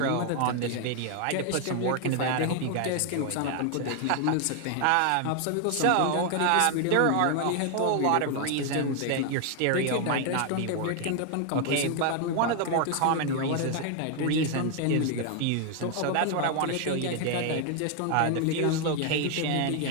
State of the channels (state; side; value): different; both; correlation 0.00